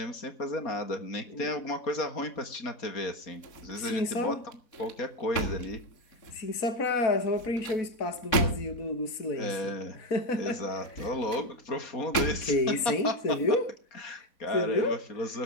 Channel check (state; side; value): late; right; 4.1 ms